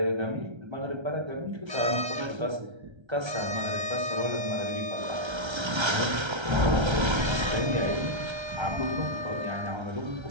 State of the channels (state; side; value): late; left; 1.3 ms